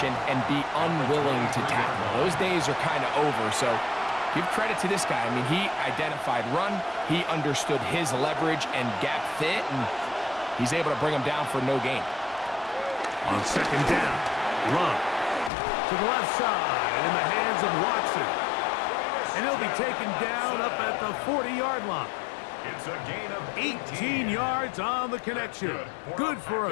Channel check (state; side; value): drops out; right; at 15.5 s